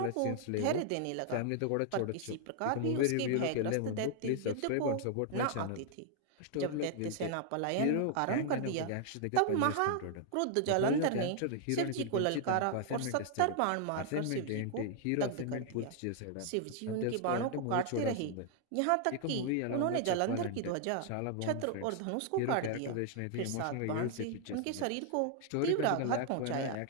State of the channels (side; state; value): both; different; correlation 0.00